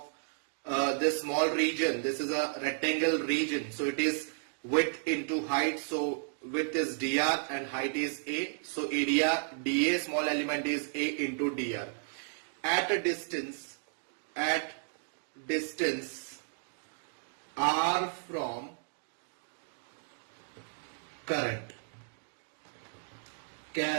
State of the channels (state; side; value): silent; left; digital silence